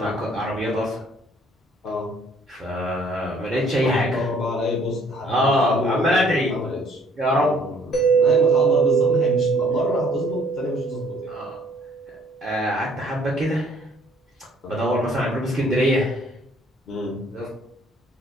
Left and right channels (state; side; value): normal; both; correlation 0.61